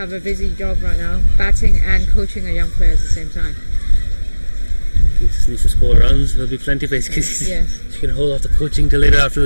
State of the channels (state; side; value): inverted; both; correlation -1.00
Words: a busy job right now, batting and coaching a young player at the same time. He just needs to score runs. There'll be plenty for HKCC. Yes. She can hold off the coaching till later